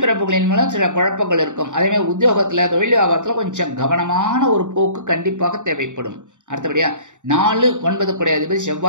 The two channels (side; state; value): left; late; 0.86 ms